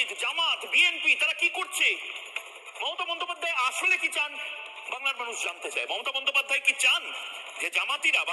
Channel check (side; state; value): both; identical; correlation 1.00